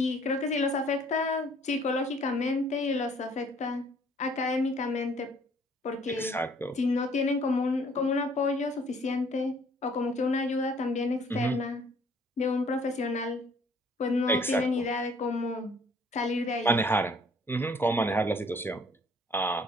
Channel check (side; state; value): both; normal; correlation 0.59